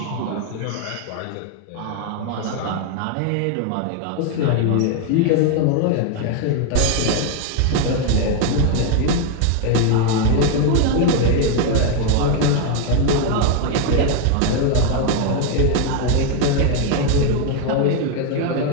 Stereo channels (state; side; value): different; both; correlation 0.01